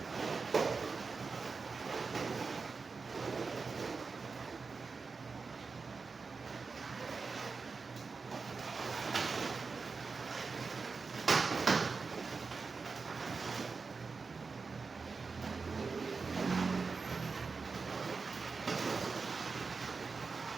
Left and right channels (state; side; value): quieter; left; 4.6 dB